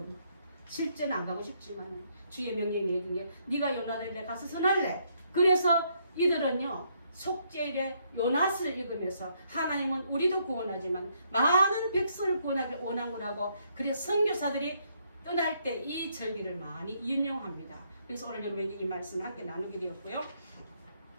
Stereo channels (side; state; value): both; inverted; correlation -0.72